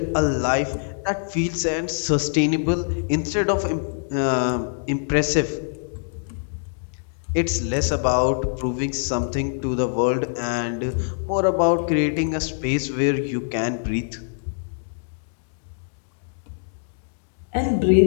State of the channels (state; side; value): silent; right; digital silence